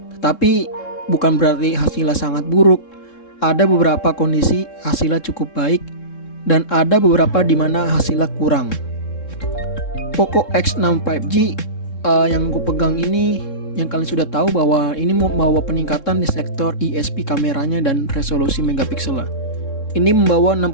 Tetapi bukan berarti hasilnya sangat buruk. Ada beberapa kondisi hasilnya cukup baik dan ada beberapa di mana hasilnya kurang. Poco X6 5G yang gue pegang ini, yang kalian sudah tahu bahwa ini membawa peningkatan di sektor ISP kameranya dan resolusi megapiksel. Ini membawa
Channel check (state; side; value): late; right; 3.7 ms